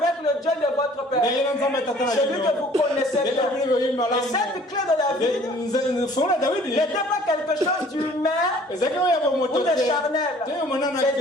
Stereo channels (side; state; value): both; normal; correlation 0.53